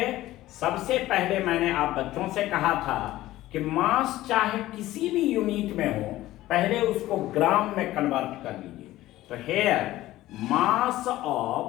सबसे पहले मैंने आप बच्चों से कहा था कि मास चाहे किसी भी यूनिट में हो, पहले उसको ग्राम में कन्वर्ट कर लीजिए। तो here mass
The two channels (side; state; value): right; quieter; 15.9 dB